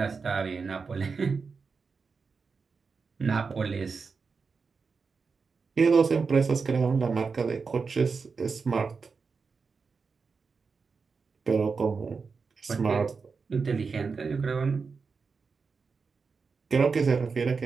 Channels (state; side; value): quieter; left; 5.0 dB